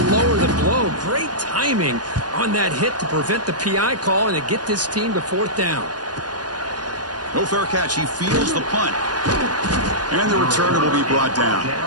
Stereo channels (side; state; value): left; late; 0.69 ms